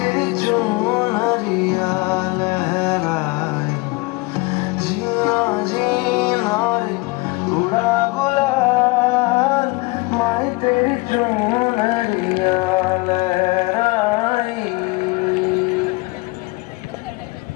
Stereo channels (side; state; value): right; quieter; 24.1 dB